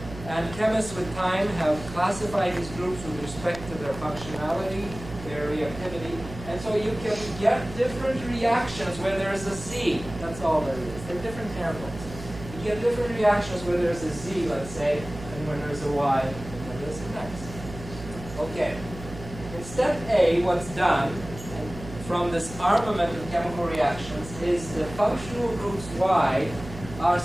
And chemists with time have classified these groups with respect to their functionality, their reactivity, and so you can get different reactions where there's a Z. That's all there is. They're different handles. You get different reactions where there's a Z, let's say, and when there's a Y, and when there's an X. Okay. In step A, what's done from this armament of chemical reactions is the functional groups Y are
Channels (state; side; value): noise; right; hum, 13 dB below the sound